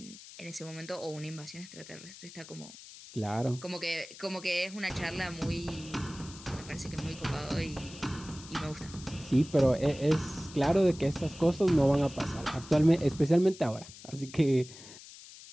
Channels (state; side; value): noise; left; hiss, 17 dB below the sound